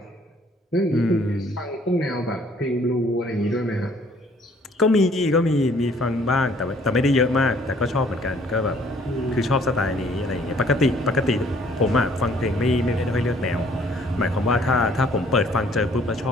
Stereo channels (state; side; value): normal; both; correlation 0.60